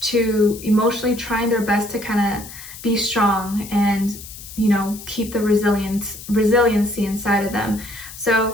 to emotionally trying their best to kind of be strong and, you know, keep the resiliency inside of them.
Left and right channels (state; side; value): noise; left; hiss, 14 dB below the sound